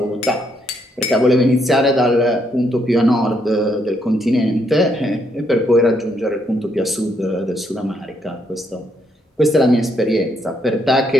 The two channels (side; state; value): both; normal; correlation 0.74